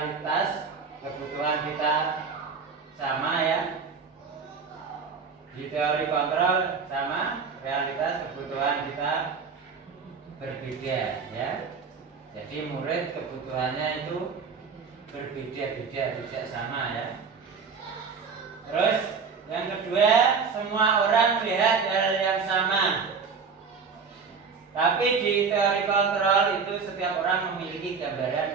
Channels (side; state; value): left; quieter; 5.5 dB